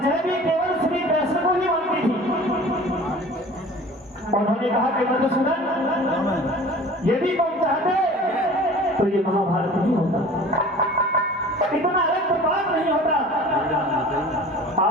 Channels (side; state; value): both; normal; correlation 0.43